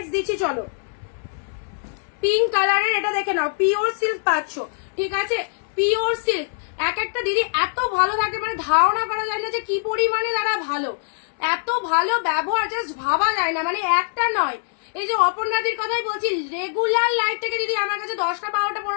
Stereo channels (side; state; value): right; silent; 64 dB below the other